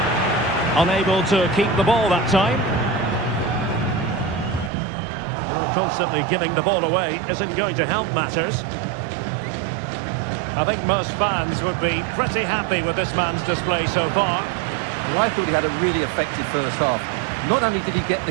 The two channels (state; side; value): drops out; left; at 4.7 s